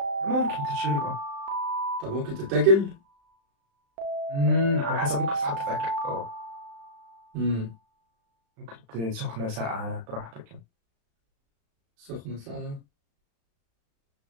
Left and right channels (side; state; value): left; late; 35 ms